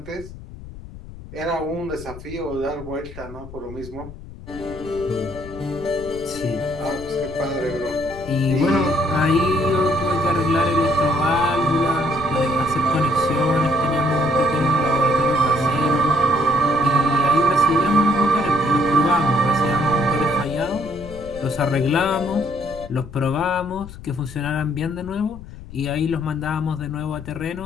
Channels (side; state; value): left; noise; rumble, 15 dB below the sound